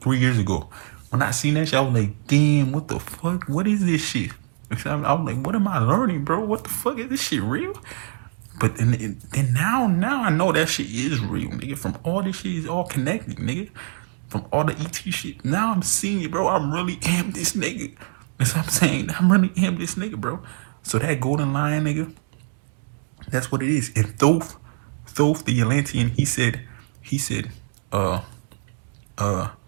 years ago. When I seen that shit, I was like, damn, what the fuck? What is this shit? I was like, what am I learning, bro? What the fuck? Is this shit real? But then now I know that shit is real, nigga. From all this shit is all connected, nigga. From all the ET shit. Now I'm seeing it, bro. I really am this nigga. That's what I'm saying. I really am this nigga, bro. So that golden lion, nigga, that's what it is. And Thoth the Atlantean, he said, he said,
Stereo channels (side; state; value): left; silent; digital silence